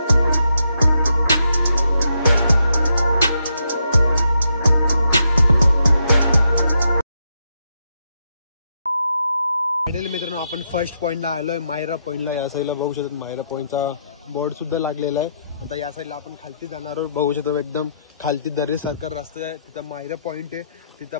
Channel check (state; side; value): inverted; both; correlation -0.79